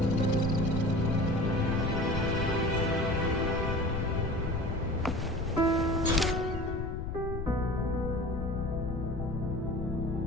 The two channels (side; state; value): left; noise; rumble, 4 dB below the sound